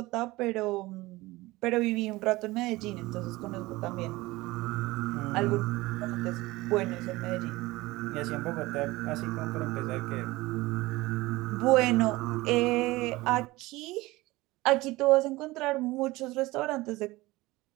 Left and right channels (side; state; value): left; quieter; 20.1 dB